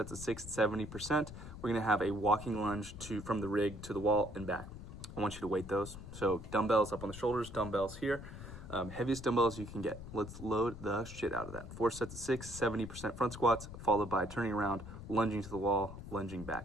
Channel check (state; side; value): noise; left; rumble, 12 dB below the sound